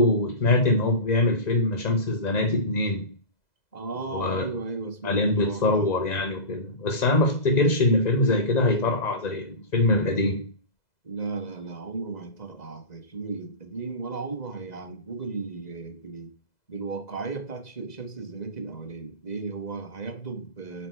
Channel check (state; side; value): late; right; 2.0 ms